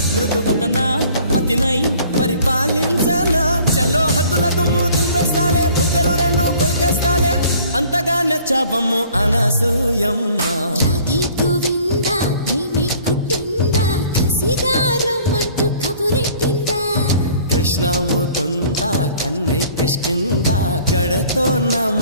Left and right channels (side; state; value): both; inverted; correlation -0.53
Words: మృదు వదన పతినై పరిపాలించనా చలో హద్దులకు మూతులు పెస్తాలే బుగ్గలు రెండు కొరికేస్తాలే అంతగా నచ్చాబమ్ము అనసూయమ్మ రాధే గోవింద ప్రేమే కుట్టిందా కసిగా రమ్మంటూ కబురెట్టిందా కృష్ణ ముకుంద కన్నెకిష్టిందా జడతో నా